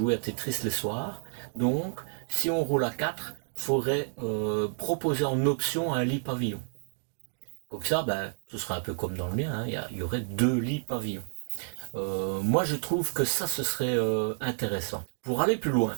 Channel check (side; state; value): left; silent; digital silence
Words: à Tetris les soirs. Donc, si on roule à 4, il faudrait proposer en option un lit pavillon. Comme ça, ce serait un peu comme dans le mien, hein, il y aurait 2 lits pavillons. Moi, je trouve que ça, ce serait intéressant. Pour aller plus loin,